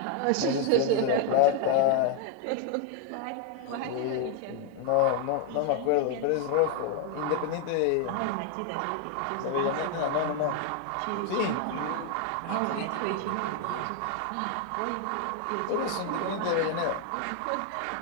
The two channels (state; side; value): different; both; correlation 0.00